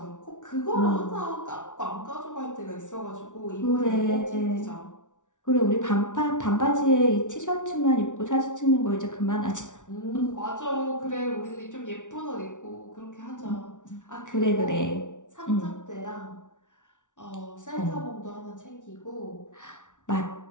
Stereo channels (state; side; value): late; right; 0.87 ms